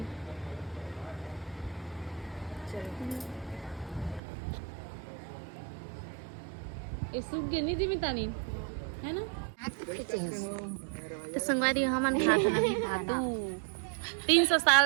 ये सूख गई नहीं थी तानी है ना तो संगवारी हमन खात नहीं खातू 300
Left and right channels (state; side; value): drops out; left; at 4.2 s